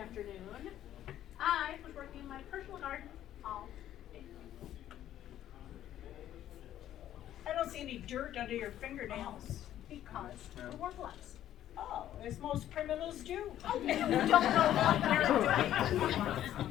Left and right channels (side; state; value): right; quieter; 12.0 dB